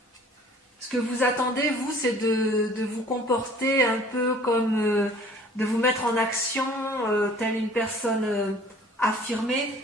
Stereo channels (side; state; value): both; normal; correlation 0.51